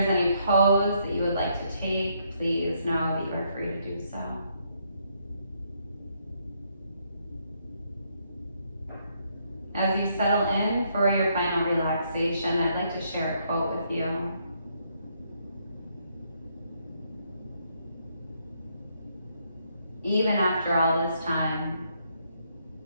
any pose that you would like to take, please know that you are free to do so. As you settle in for your final relaxation, I'd like to share a quote with you. Even after all this time,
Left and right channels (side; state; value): both; inverted; correlation -0.73